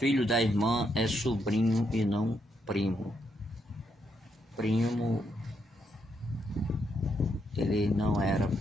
da irmã é sobrinho e não primo. Primo, ele não era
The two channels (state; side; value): normal; both; correlation 0.78